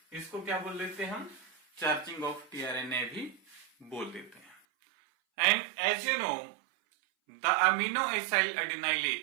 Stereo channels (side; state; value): left; drops out; at 4.5 s